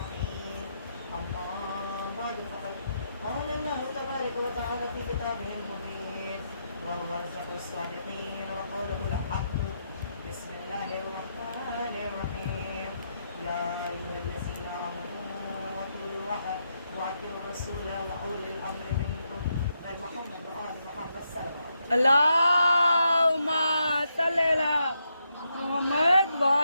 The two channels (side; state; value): both; inverted; correlation -0.81